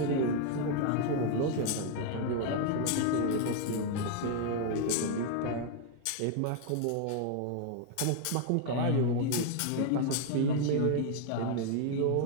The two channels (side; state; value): both; different; correlation 0.00